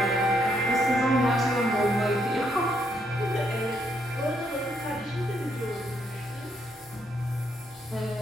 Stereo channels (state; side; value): normal; both; correlation 0.74